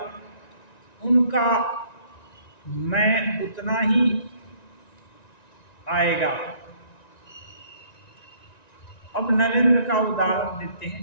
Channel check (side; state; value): right; late; 1.9 ms